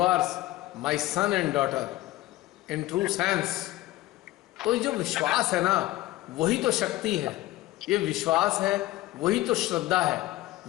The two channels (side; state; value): right; quieter; 17.0 dB